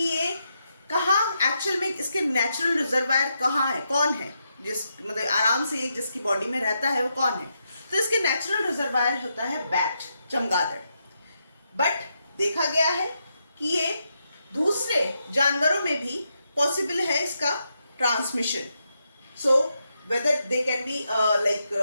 ये कहाँ एक्चुअल में इसके नेचुरल रिजर्वायर कहाँ है, कौन है, जिस मतलब आराम से जिसकी बॉडी में रहता है, वो कौन है, तो इसके नेचुरल रिजर्वायर होता है बैट, चमगादड़। बट देखा गया है कि ये दूसरे जानवरों में भी पॉसिबल है इसका transmission. So whether they can be like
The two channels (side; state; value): both; inverted; correlation -0.83